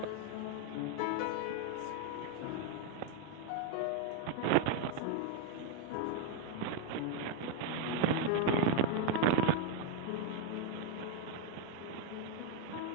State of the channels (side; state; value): both; different; correlation 0.00